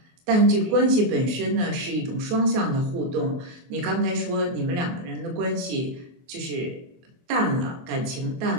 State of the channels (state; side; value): late; left; 23 ms